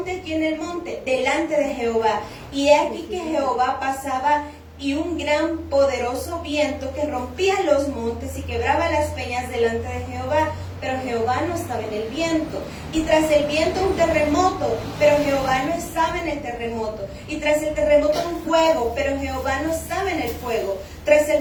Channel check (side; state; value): both; identical; correlation 1.00